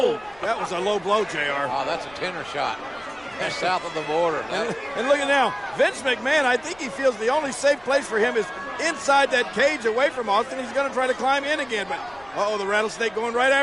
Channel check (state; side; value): noise; left; rumble, 27 dB below the sound